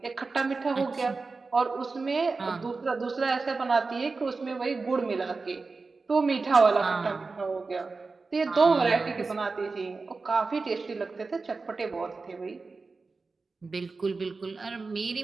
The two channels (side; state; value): left; quieter; 4.1 dB